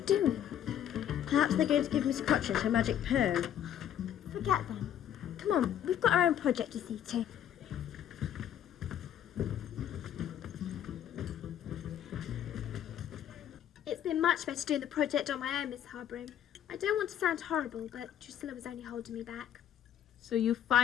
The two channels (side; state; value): right; quieter; 10.3 dB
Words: doing? Perhaps they're going to give Miss Cratchit her magic perm. Forget them. Come on, we've got our own project to see to. It's been much better doing the project on my own, Miss Hardbroom. I don't want to sound horrible, but Drusilla was only holding me back. So you